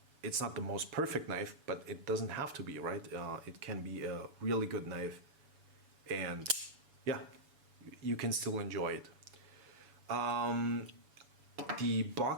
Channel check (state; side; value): late; left; 7.1 ms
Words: It's not the most perfect knife, but it doesn't have to be, right? It can be a really good knife, and yeah, you can still enjoy it. The